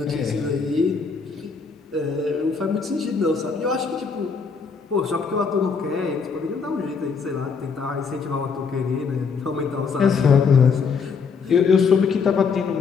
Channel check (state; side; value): quieter; right; 5.4 dB